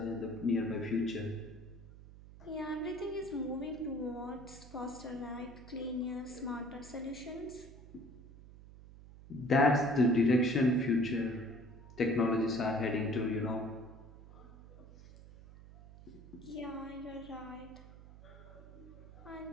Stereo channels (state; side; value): noise; right; hum, 18 dB below the sound